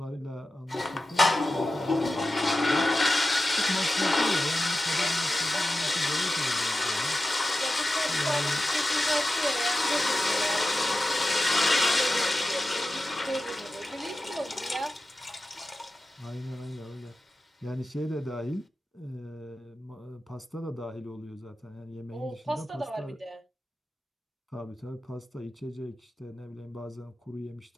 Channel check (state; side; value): normal; both; correlation 0.93